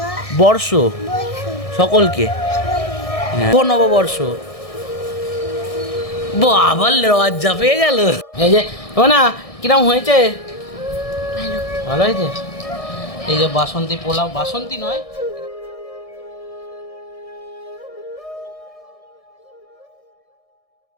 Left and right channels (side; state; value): right; late; 1.6 ms